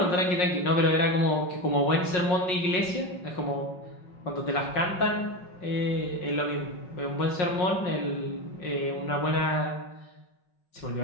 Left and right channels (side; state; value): right; late; 5.5 ms